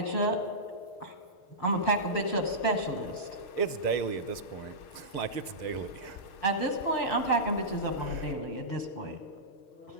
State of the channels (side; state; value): right; late; 6.6 ms